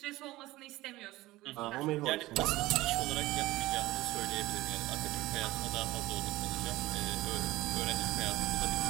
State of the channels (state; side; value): quieter; left; 18.0 dB